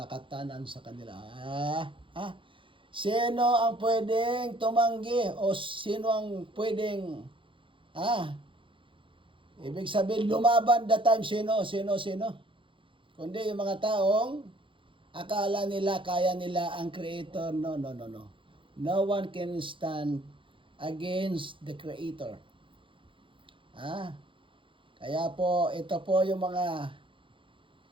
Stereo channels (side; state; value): left; late; 0.25 ms